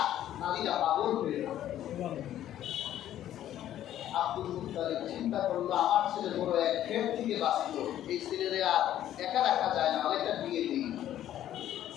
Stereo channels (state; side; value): quieter; right; 12.0 dB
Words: নারীরা পাগল হয়ে গেল। আব্দুল মুত্তালিব চিন্তা করলো আমার ছেলে বড় এক ক্ষেত থেকে বাঁচল, এই ছেলেরে আর একা রাখা যায় না, আরেকটা বিয়ে দিই।